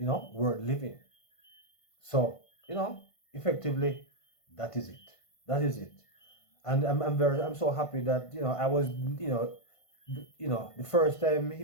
living. So, effectively, that is it. That is it. And I'm so happy that I was the first time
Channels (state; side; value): late; right; 1.5 ms